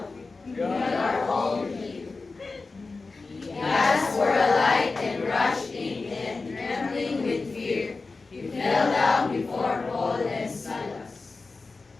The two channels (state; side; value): quieter; right; 3.9 dB